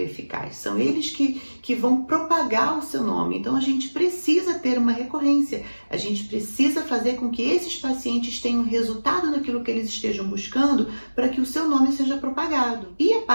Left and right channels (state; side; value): inverted; both; correlation -1.00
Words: eficaz. São eles que vão propagar o seu nome. Então, a gente precisa ter uma recorrência. A gente precisa fazer com que esses pacientes tenham resultado naquilo que eles estejam buscando para que o seu nome seja propagado. E a